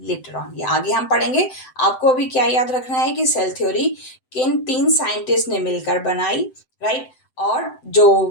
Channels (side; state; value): right; late; 7.8 ms